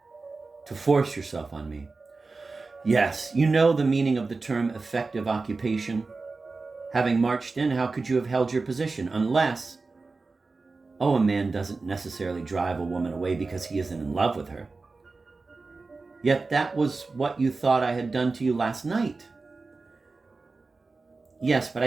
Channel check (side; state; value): left; quieter; 3.9 dB